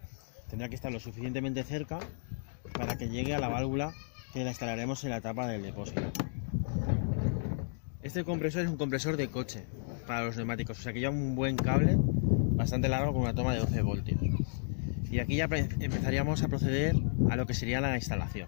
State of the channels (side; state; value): right; silent; digital silence